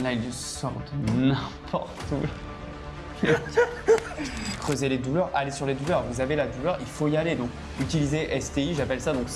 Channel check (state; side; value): identical; both; correlation 1.00